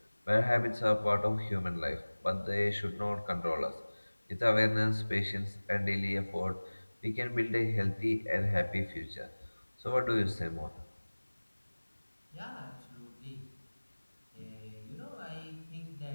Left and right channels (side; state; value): both; inverted; correlation -1.00